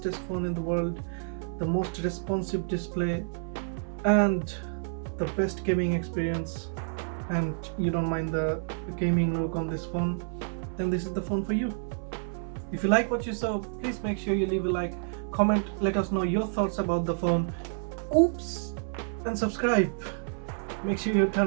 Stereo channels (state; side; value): silent; left; 59 dB below the other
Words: phone in the world, the most responsive display, and the best gaming experience, and you don't mind the gaming look on this phone, then this is the phone for you. If you like what you saw, please make sure you leave a like, comment, let us know your thoughts about the phone, and subscribe. Make sure you